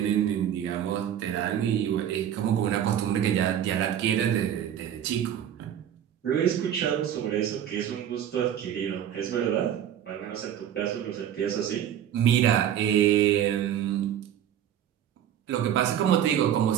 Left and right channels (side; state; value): left; quieter; 10.1 dB